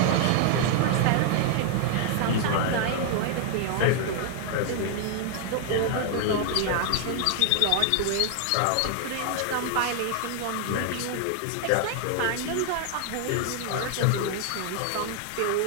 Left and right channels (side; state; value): both; different; correlation 0.00